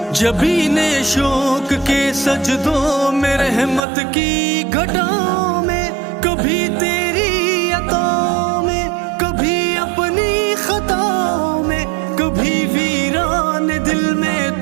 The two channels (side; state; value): left; drops out; at 3.9 s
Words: जबीने शौक के सजदों में, रहमत की घटाओं में, कभी तेरी अताओं में, कभी अपनी खताओं में, कभी वीरान दिल में